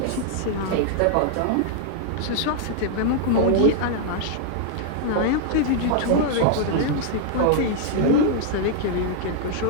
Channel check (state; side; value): different; both; correlation -0.01